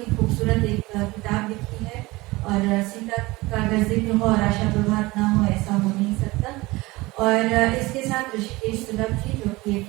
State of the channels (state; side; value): quieter; left; 21.4 dB